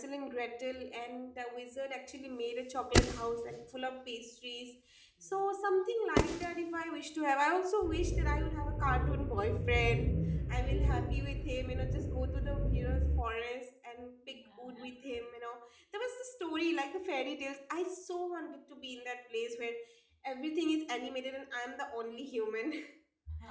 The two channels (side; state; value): both; identical; correlation 1.00